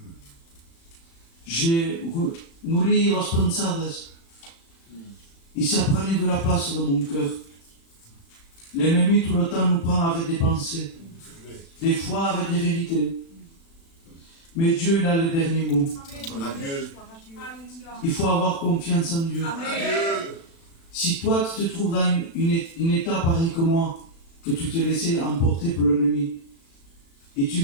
J'ai nourri las pensadas. Il s'apprenait de la place de mon cœur. L'ennemi tout le temps nous prend avec des pensées, des fois avec des vérités. Mais Dieu, il a le dernier mot. Il faut avoir confiance en Dieu. Si toi, tu te trouves dans une état pareil que moi, que tu t'es laissé emporter par l'ennemi, et tu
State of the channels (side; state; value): right; late; 36 ms